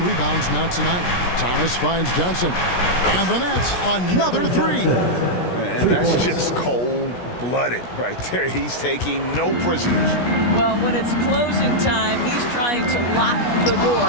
rebounds now tonight. Thomas finds Johnson. And the Nets, another 3. And that's just cold-blooded right there. He's taking no prisoners. Well, when it's closing time, he's trying to lock the door.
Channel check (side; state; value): right; late; 17 ms